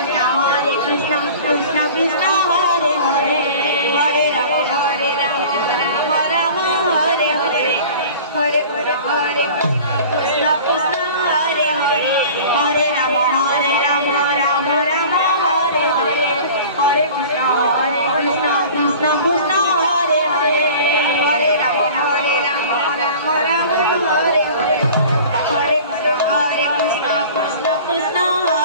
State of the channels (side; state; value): both; inverted; correlation -0.42